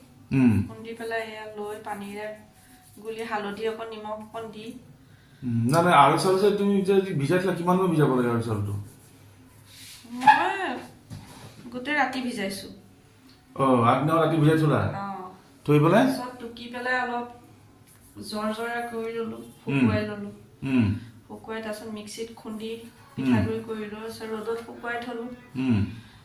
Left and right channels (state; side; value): identical; both; correlation 1.00